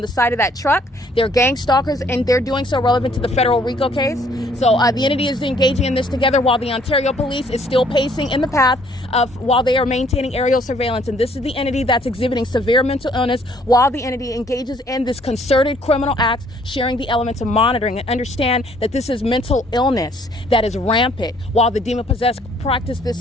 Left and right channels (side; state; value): both; normal; correlation 0.62